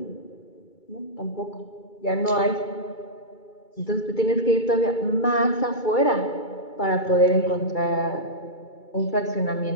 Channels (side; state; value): right; late; 2.3 ms